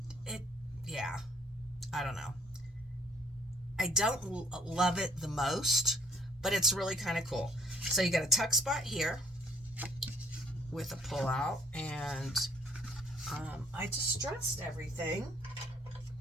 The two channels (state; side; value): normal; both; correlation 0.60